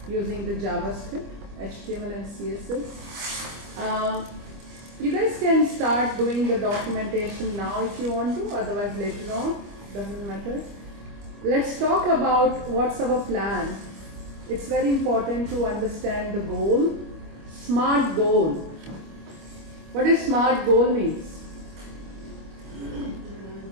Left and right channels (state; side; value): late; left; 25 ms